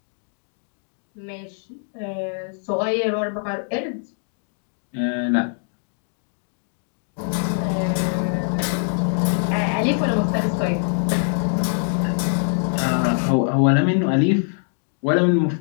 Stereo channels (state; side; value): silent; right; 60 dB below the other